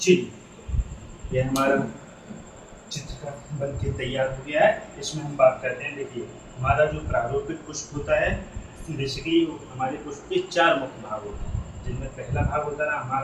यह हमारा चित्र का बन के तैयार हो गया है। इसमें हम बात करते हैं। देखिए, हमारा जो प्रारूपिक पुष्प होता है, बेसिकली हमारे पुष्प के 4 मुख्य भाग होते हैं, जिनमें पहला भाग होता है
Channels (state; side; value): identical; both; correlation 1.00